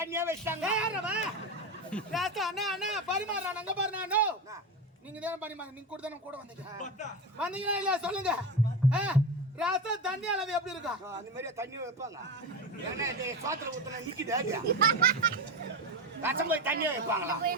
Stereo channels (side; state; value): both; normal; correlation 0.20